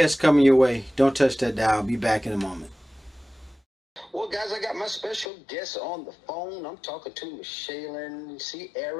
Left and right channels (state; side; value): drops out; right; at 5.3 s